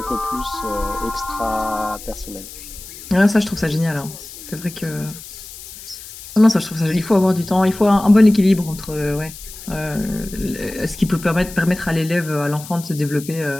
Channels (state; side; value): noise; left; hiss, 15 dB below the sound